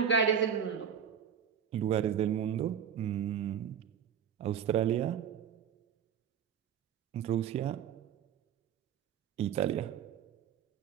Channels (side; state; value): left; quieter; 8.3 dB